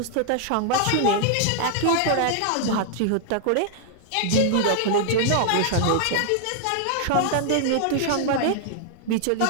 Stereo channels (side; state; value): both; different; correlation -0.01